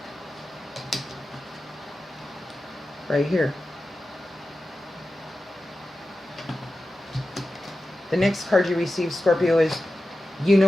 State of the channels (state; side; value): normal; both; correlation 0.93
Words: Right here. The next card you receive, Scorpio, is you